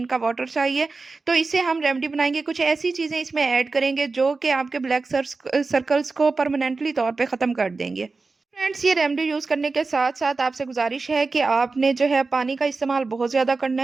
वाटर चाहिए। तो इससे हम रेमेडी बनाएँगे, कुछ ऐसी चीज़ें इसमें ऐड करेंगे जो कि आपके ब्लैक सर्कल्स को परमानेंटली तौर पे ख़त्म कर देंगे। फ्रेंड्स, ये रेमेडी यूज़ करने के साथ-साथ आपसे गुज़ारिश है कि आपने जो है पानी का इस्तेमाल बहुत ज़्यादा करना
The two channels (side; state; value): left; quieter; 4.0 dB